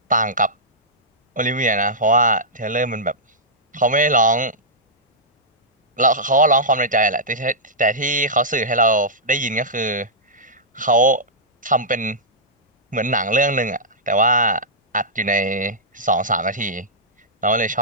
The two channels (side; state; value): both; normal; correlation -0.13